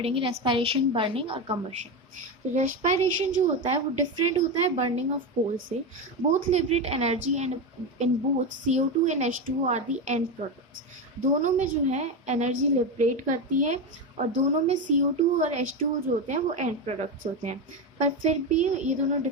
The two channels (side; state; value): both; normal; correlation 0.15